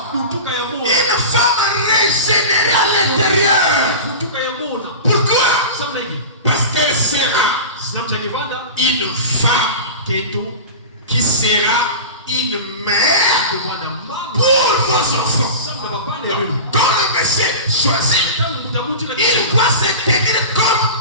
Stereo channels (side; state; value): both; inverted; correlation -0.30